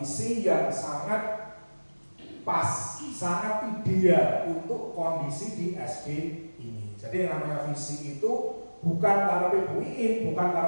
yang sangat pas, sangat ideal untuk kondisi di SD ini. Jadi yang namanya visi itu bukan karepe Bu Iin, bukan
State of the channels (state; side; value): inverted; both; correlation -1.00